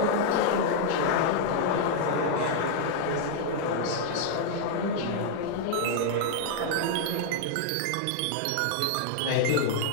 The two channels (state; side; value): different; both; correlation -0.01